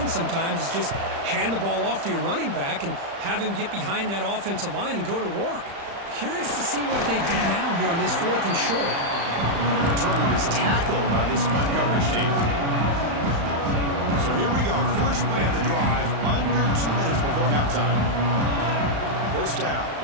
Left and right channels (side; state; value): left; late; 35 ms